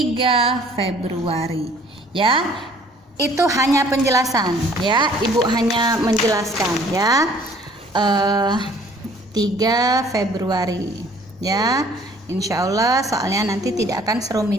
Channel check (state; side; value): normal; both; correlation 0.55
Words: Februari ya. Itu hanya penjelasan ya, Ibu hanya menjelaskan ya. 3 Februari ya. Insya Allah soalnya nanti tidak akan